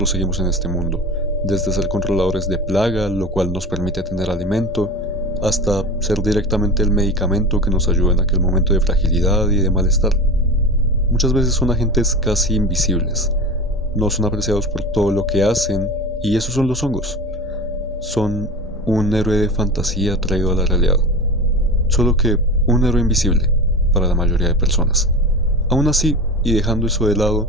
seguimos en este mundo, desde ser controladores de plaga, lo cual nos permite tener alimento, hasta ser directamente el medicamento que nos ayuda en aquel momento de fragilidad y de malestar. Muchas veces son agentes casi invisibles, no son apreciados por todo lo que hacen, y esos son los hongos. Son un héroe de fantasía traído a la realidad, solo que un héroe invisible para la mayoría de personas. Aún así, y dejando eso de lado,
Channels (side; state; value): both; normal; correlation 0.29